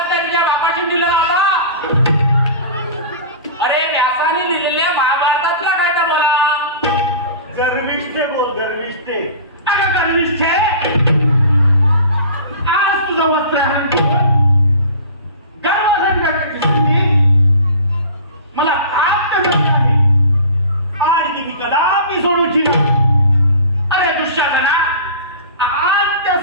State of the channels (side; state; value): both; inverted; correlation -0.39